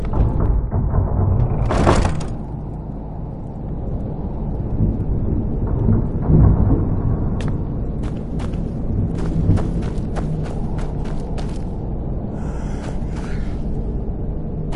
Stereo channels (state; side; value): identical; both; correlation 1.00